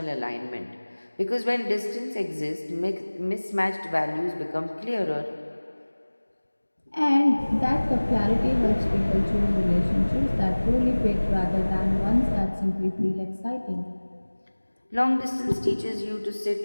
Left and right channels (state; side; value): inverted; both; correlation -1.00